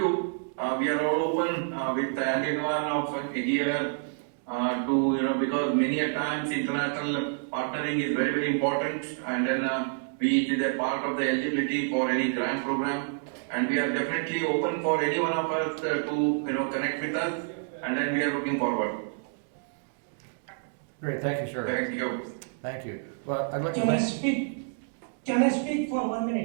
we are all open with anyone of here to, because many a times international partnering is very, very important, and then it is a part of the eligibility for any grant program, and we are definitely open for any one of us to, connect with us, and then we are looking forward. Great, thank you, sir. Thank you. Thank you. Well, I'd like to Can I thank... speak? Can I speak for 1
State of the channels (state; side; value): silent; left; digital silence